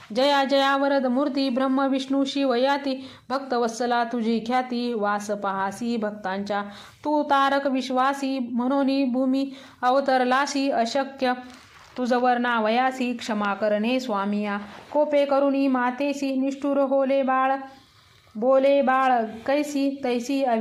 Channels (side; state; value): both; identical; correlation 1.00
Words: जया जया वरद मूर्ती ब्रह्म विष्णू शिव याती. भक्तवत्सला तुझी ख्याती वास पहासी भक्तांच्या. तू तारक विश्वासी म्हणून भूमी अवतरलासी. अशक्य तुझवर नावयासी क्षमा करणे स्वामिया. कोपे करुणी मातेसी निष्ठुर होले बाळ बोले बाळ कैसी तैसी